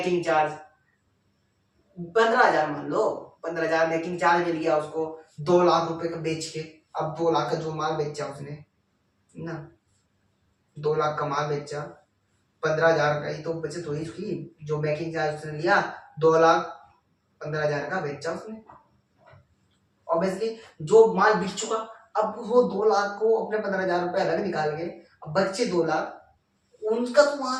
चार्ज 15,000 मान लो, 15,000 मेकिंग चार्ज मिल गया उसको 2 लाख रुपए का बेच के। अब 2 लाख का जो माल बेचा उसने ना, 2 लाख का माल बेचा, 15,000 का ही तो बचत हुई उसकी, जो मेकिंग चार्ज उसने लिया 2,15,000 का बेचा उसने। ऑब्वियसली जो माल बिक चुका, अब वो 2 लाख को अपने 15,000 रुपए अलग निकाल के, अब बच्चे 2 लाख, उनका तो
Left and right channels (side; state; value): both; identical; correlation 1.00